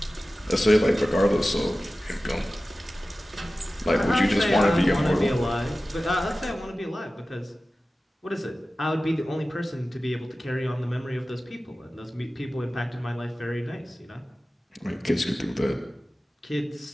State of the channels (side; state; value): both; normal; correlation 0.96